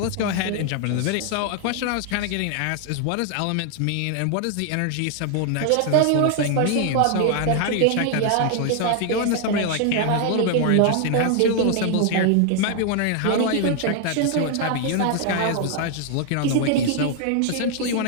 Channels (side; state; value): both; different; correlation 0.00